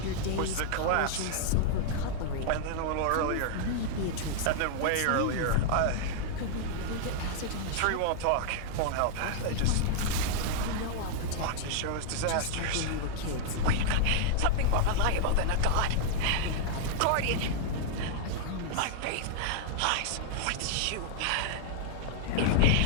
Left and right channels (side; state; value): both; different; correlation -0.01